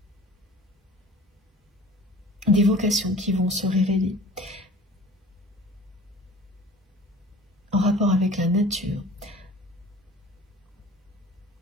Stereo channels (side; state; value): both; normal; correlation 0.44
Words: des vocations qui vont se révéler en rapport avec la nature,